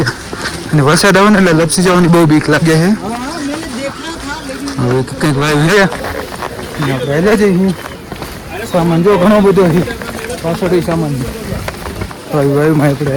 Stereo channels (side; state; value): both; identical; correlation 1.00